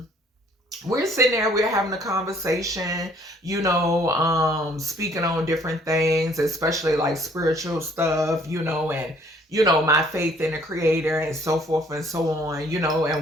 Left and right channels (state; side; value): normal; both; correlation 0.60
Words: we're sitting there, we're having a conversation, speaking on different things, especially like spiritual stuff, and my faith in the creator and so forth and so on,